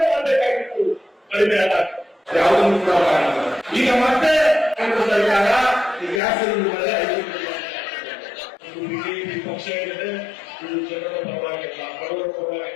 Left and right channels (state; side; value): drops out; right; at 6.2 s